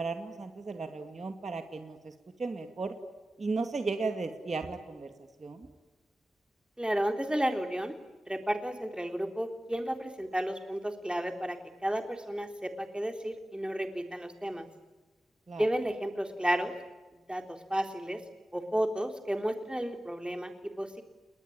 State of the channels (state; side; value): normal; both; correlation 0.95